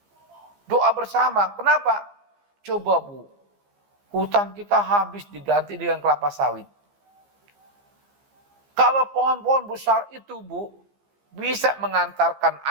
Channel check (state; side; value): late; left; 15 ms